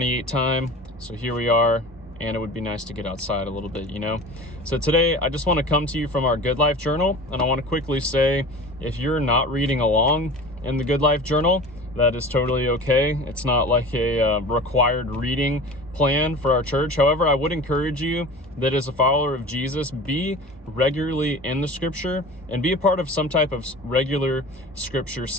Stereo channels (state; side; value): normal; both; correlation 0.37